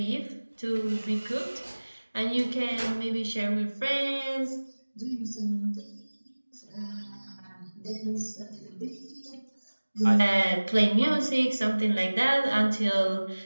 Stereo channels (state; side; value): inverted; both; correlation -1.00